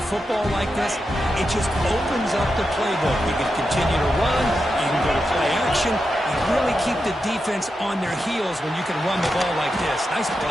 football like this, it just opens up the playbook. You can continue to run, you can go to play action, you really keep the defense on their heels when you can run the ball like this. Nice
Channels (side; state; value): both; normal; correlation 0.88